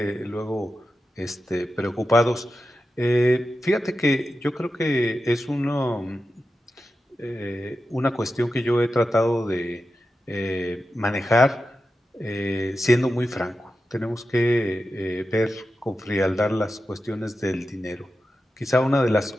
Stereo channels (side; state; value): both; normal; correlation 0.91